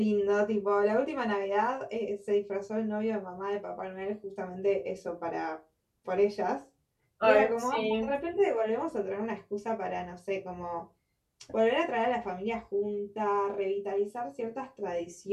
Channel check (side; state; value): both; identical; correlation 1.00